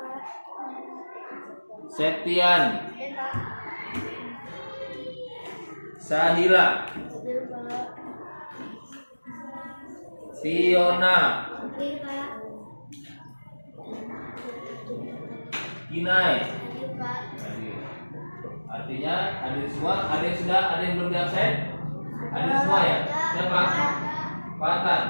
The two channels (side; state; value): both; inverted; correlation -1.00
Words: Septian. Sahila. Fiona. Kinai. Artinya hadir semua. Ada yang sudah, ada yang belum absen? Hadir semua ya? Siapa?